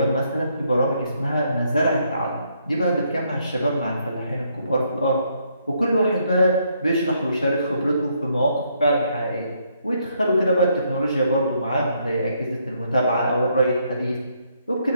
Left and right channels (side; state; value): both; inverted; correlation -0.73